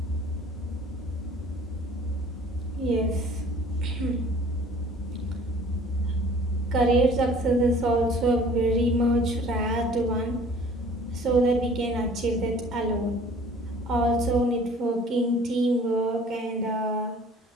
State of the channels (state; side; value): normal; both; correlation 0.51